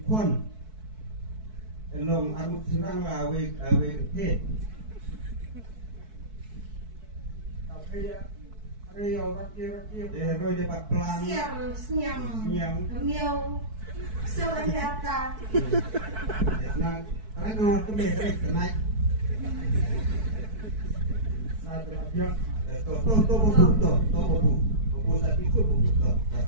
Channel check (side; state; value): left; late; 4.6 ms